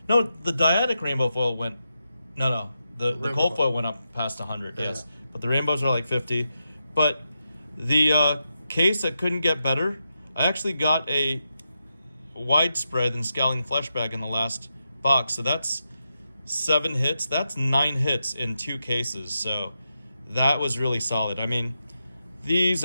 No, the Diadic rainbow foil went, no, the cold foil went up past 100, yes. Yeah. But the rainbows are like 50. But the case that couldn't get better, I actually got a widespread and Scowling Flesh bag in the last box. So that's 7 hits. That's 9 hits in 2 cases. So that was really solid. I mean, these,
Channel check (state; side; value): inverted; both; correlation -0.87